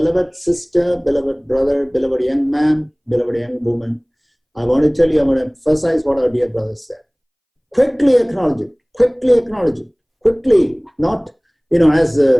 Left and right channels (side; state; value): both; identical; correlation 1.00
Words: sister, beloved brother, beloved young man, beloved young woman, I want to tell you, I want to emphasize what our dear brother said. Quickly acknowledge it. Quickly acknowledge it. Quickly, not, as,